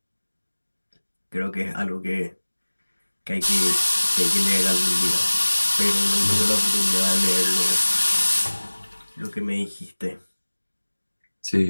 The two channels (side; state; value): both; inverted; correlation -1.00